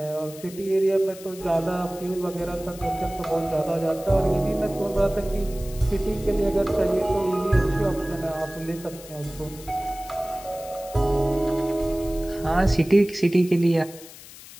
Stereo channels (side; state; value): left; noise; hiss, 17 dB below the sound